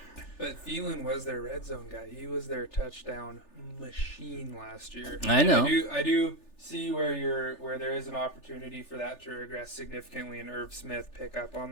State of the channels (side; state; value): right; late; 3.4 ms